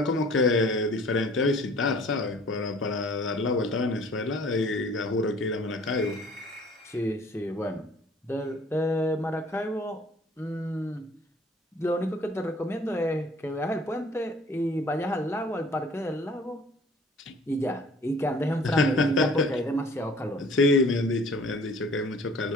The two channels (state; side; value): normal; both; correlation 0.52